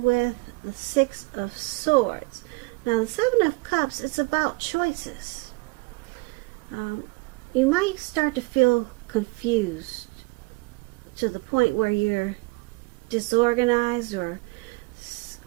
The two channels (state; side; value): quieter; left; 27.1 dB